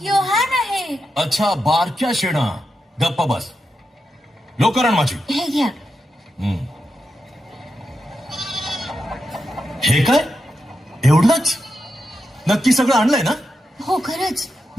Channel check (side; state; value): both; normal; correlation 0.87